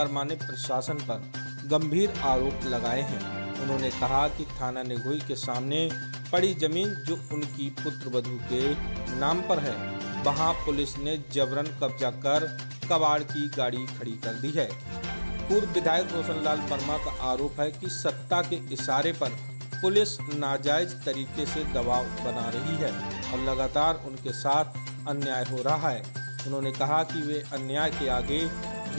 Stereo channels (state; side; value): inverted; both; correlation -1.00